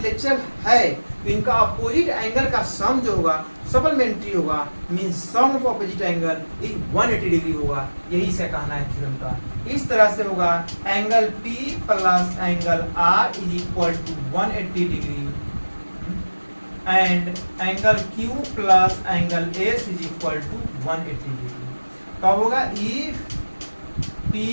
है तो इनका अपोजिट एंगल का सम जो होगा सप्लीमेंट्री होगा, means sum of opposite angle is 180 degree होगा। यही से कहना है थ्योरम का। इस तरह से होगा angle P plus angle R is equal to 180 degree and angle Q plus angle S is equal to 180 degree. कब होगा, if P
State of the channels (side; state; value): both; inverted; correlation -1.00